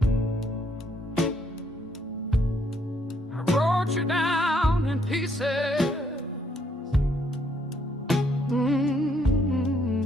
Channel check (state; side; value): normal; both; correlation 0.70